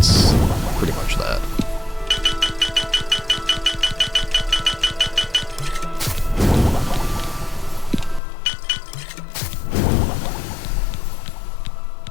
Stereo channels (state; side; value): drops out; right; at 8.2 s